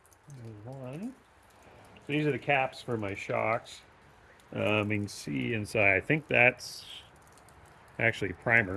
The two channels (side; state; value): both; identical; correlation 1.00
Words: There's one. So these are the caps for my shocks. You can see inside. I think that's actually